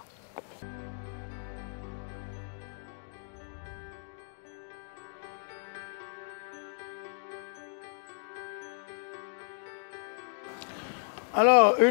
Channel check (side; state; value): right; silent; 55 dB below the other